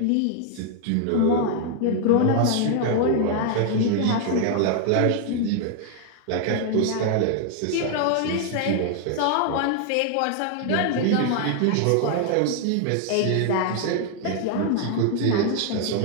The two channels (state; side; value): different; both; correlation 0.00